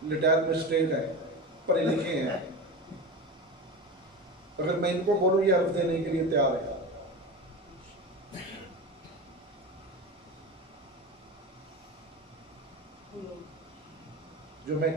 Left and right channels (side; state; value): both; normal; correlation 0.26